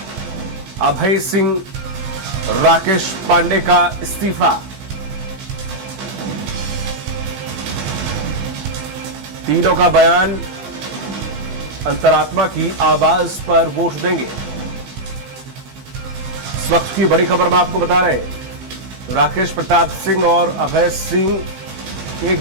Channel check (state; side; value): late; left; 20 ms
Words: अभय सिंह, राकेश पांडे का इस्तीफा। तीनों का बयान, अंतरात्मा की आवाज पर वोट देंगे। इस वक्त की बड़ी खबर में आपको बता रहे हैं, राकेश प्रताप सिंह और अभय सिंह